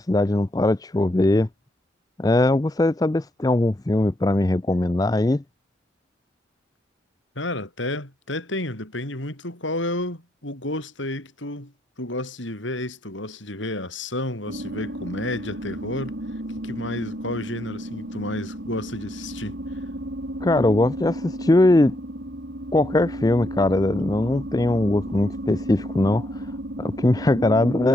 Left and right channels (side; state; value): both; normal; correlation 0.77